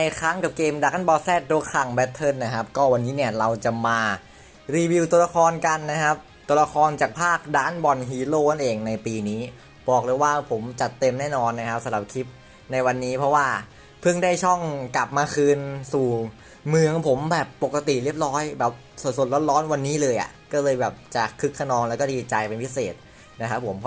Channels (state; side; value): identical; both; correlation 1.00